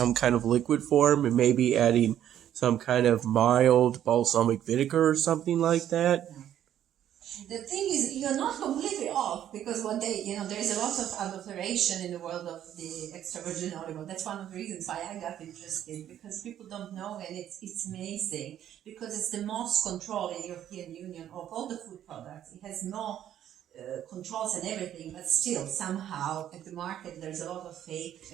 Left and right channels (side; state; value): left; quieter; 10.9 dB